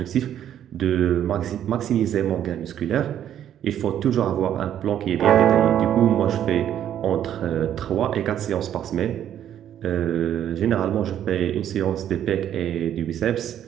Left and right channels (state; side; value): quieter; left; 10.5 dB